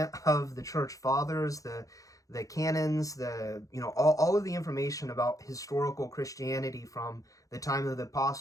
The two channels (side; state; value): right; late; 0.16 ms